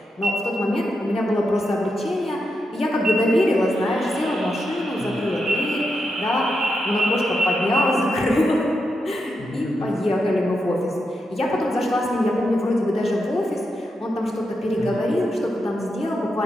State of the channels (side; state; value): both; normal; correlation 0.86